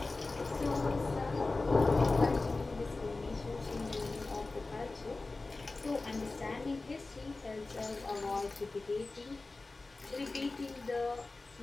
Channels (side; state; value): right; quieter; 3.4 dB